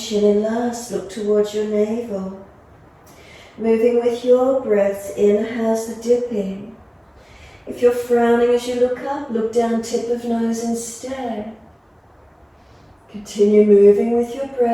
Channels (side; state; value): both; identical; correlation 1.00